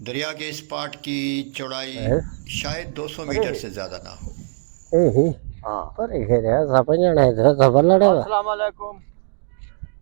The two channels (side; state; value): left; silent; digital silence